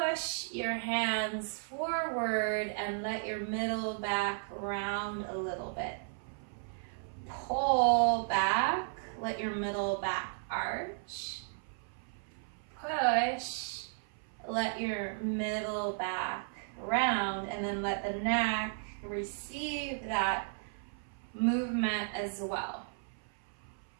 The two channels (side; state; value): left; silent; 55 dB below the other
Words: your hands forward and let your middle back round a little bit. Pull back. Let your middle back arch. Push, let your middle back round, and then let the neck receive that movement as well.